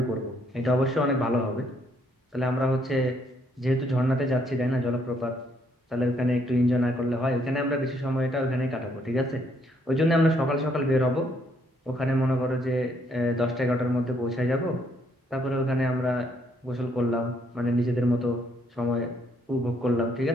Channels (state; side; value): normal; both; correlation 0.70